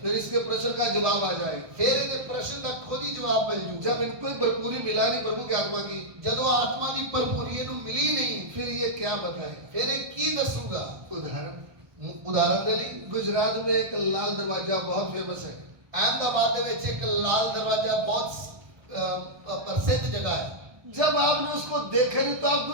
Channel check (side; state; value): left; late; 1.2 ms